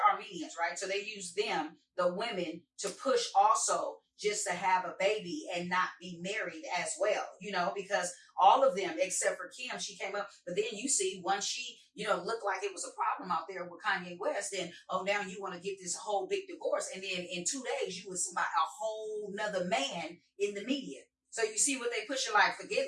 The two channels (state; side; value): identical; both; correlation 1.00